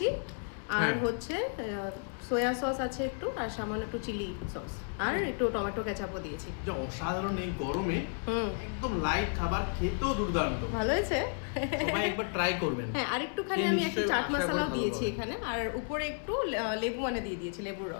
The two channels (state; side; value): silent; right; 56 dB below the other